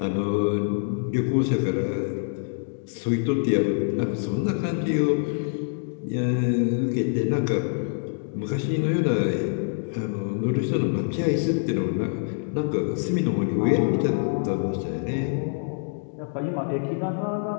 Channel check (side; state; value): right; silent; digital silence